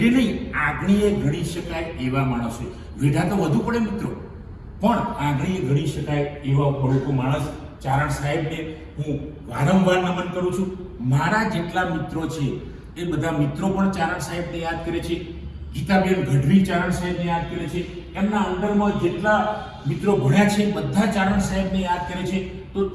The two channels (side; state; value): both; identical; correlation 1.00